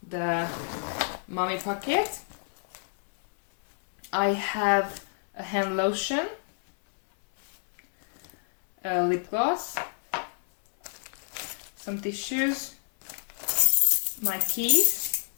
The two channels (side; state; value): right; silent; 59 dB below the other